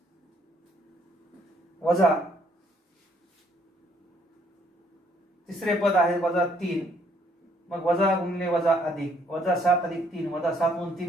वजा तिसरे पद आहे वजा 3. मग वजा गुणिले वजा अधिक वजा 7 अधिक 3 वजा 7 मधून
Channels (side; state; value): both; normal; correlation 0.66